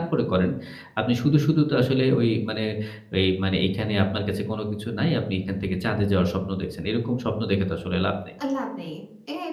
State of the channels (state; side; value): identical; both; correlation 1.00